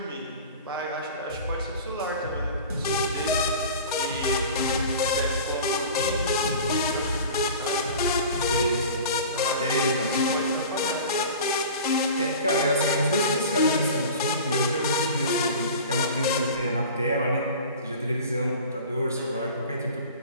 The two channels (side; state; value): both; inverted; correlation -0.39